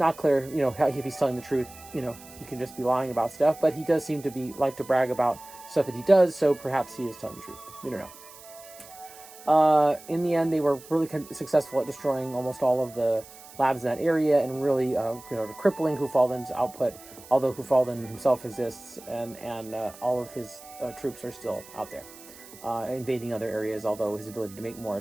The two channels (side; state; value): right; noise; hiss, 19 dB below the sound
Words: clear, if he's telling the truth. He could just be lying about stuff, but he does seem to like to brag about stuff that he does, so perhaps he is telling the truth. We don't know. In the end, they were really successful at destroying almost all of the labs in that area and really, crippling Kufaldan's output, although Kufaldan himself exists and all of his troops are still out there, invading other areas, although his ability to make more